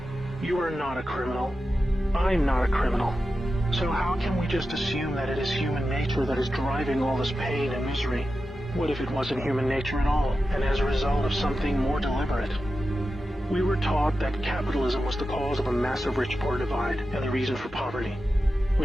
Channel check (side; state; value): both; normal; correlation 0.91